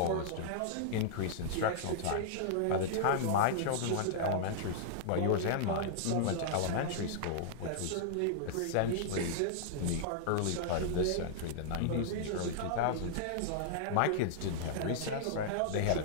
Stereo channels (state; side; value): different; both; correlation -0.01